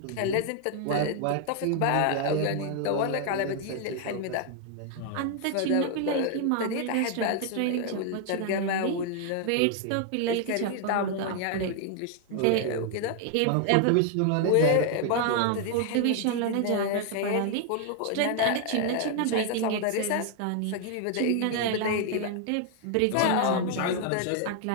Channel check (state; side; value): different; both; correlation 0.00